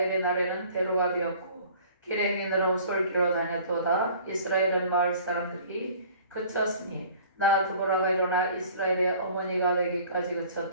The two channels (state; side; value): inverted; both; correlation -0.49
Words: 날에는 대로가 비었고 길에 행인들은 오솔길로 다녔도다. 이스라엘은 마을 사람들이 그쳤으니 나 드보라가 일어나 이스라엘의 어머니가 되기까지